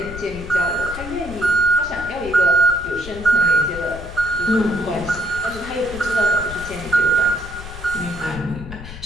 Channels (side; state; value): left; noise; rumble, 12 dB below the sound